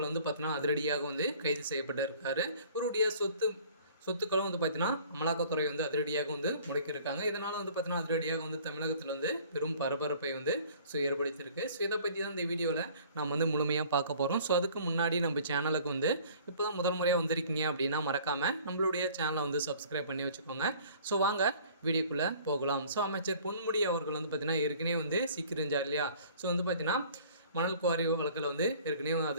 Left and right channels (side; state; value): both; inverted; correlation -0.51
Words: பார்த்தீங்கன்னா அதிரடியாக கைது செய்யப்பட்டிருக்காரு. இவருடைய சொத்துக்களும் பார்த்தீங்கன்னா அமலாக்கத்துறை அதிரடியாக முடக்கியிருக்காங்க. இதனால் பார்த்தீங்கன்னா அதிரடியாக தமிழகத்தில் பெரும் பரபரப்பை ஏற்படுத்தியிருக்கு. ஸோ இதை பற்றி தான் இந்த வீடியோவில் நாம் முழுமையாக பார்க்க போகிறோம். ஸோ அதுக்கு முன்னாடி நம்ம சேனலுக்கு இப்போ தான் முதல் முறையாக வந்திருக்கீங்க அப்படின்னா மறக்காமல் நம்மளுடைய சேனலை சப்ஸ்கிரைப் பண்ணி வச்சுக்கோங்க. ஸோ வாங்க வீடியோக்குள்ளே போகலாம். ஸோ அமைச்சர் பொன்முடி அவர்கள் பார்த்தீங்கன்னா ஏற்கனவே சிக்கிருந்தார் இல்லையா? ஸோ பார்த்தீங்கன்னா மணல் குவாரி வழக்கில் ஏற்கனவே